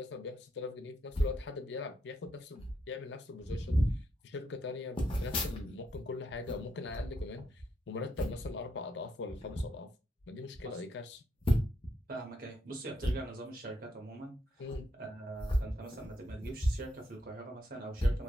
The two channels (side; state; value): both; normal; correlation 0.78